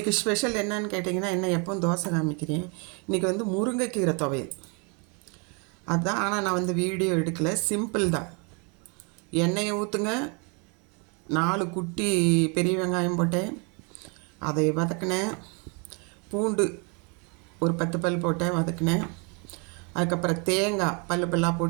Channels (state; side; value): quieter; left; 33.8 dB